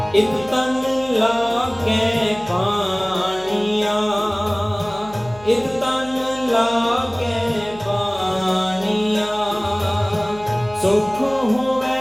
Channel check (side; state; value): left; noise; hum, 20 dB below the sound